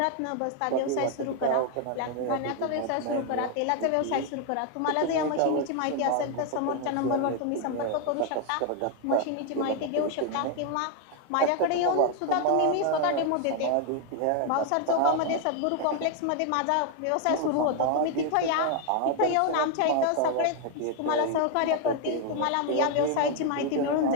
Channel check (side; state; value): both; different; correlation 0.01